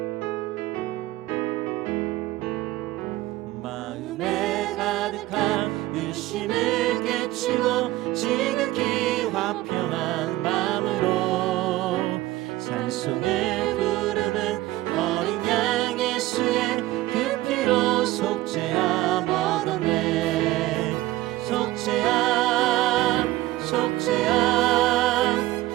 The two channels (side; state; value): left; quieter; 17.1 dB